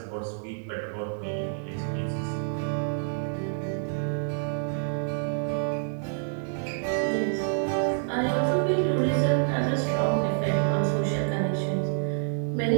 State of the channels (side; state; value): left; silent; digital silence